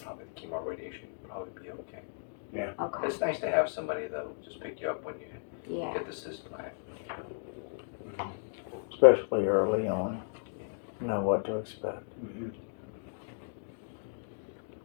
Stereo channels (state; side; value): silent; right; digital silence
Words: probably the chemo radiation would probably be okay. okay. It's nice to have somebody that'll just pick you up when you Yeah. get the cisplatin. Especially early on. Know what to expect. Mm-hmm.